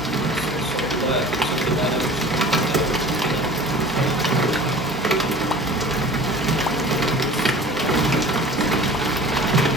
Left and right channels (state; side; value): normal; both; correlation 0.42